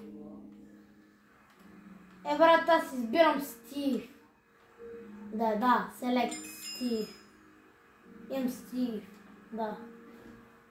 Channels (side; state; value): both; identical; correlation 1.00